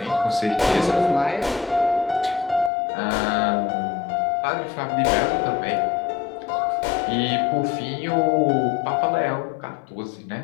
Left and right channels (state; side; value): drops out; right; at 2.7 s